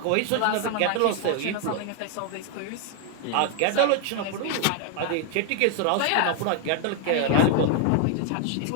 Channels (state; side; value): different; both; correlation 0.01